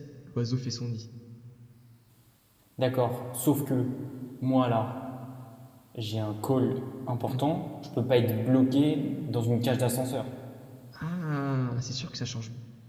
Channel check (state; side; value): identical; both; correlation 1.00